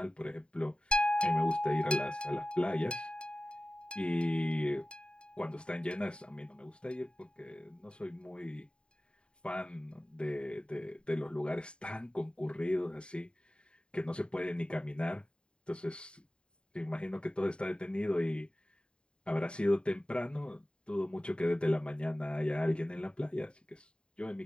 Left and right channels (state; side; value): late; right; 0.053 ms